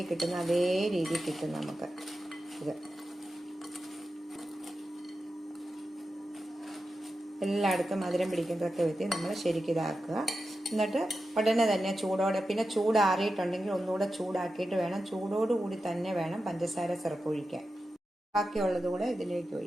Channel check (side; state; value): both; normal; correlation 0.91